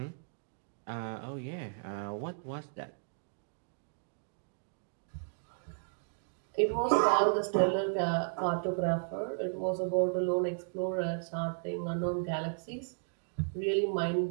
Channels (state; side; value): silent; left; digital silence